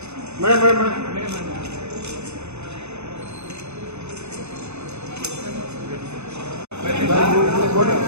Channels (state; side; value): late; left; 0.81 ms